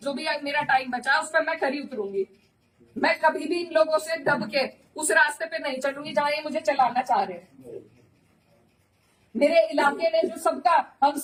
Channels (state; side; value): identical; both; correlation 1.00